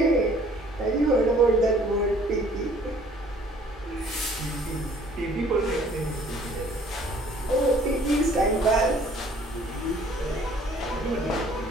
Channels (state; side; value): normal; both; correlation 0.56